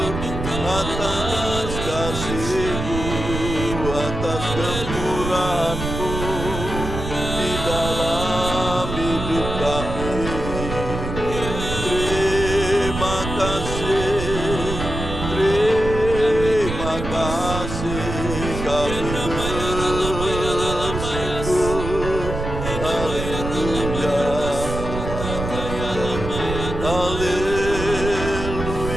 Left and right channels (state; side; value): noise; right; rumble, 5 dB below the sound